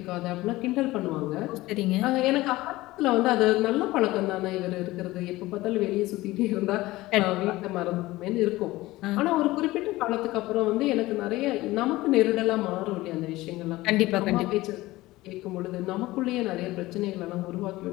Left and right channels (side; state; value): right; quieter; 18.5 dB